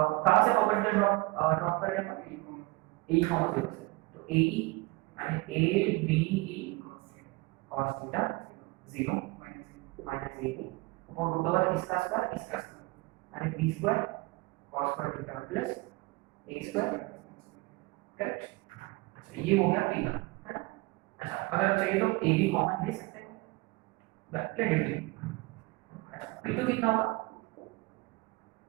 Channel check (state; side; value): quieter; left; 23.8 dB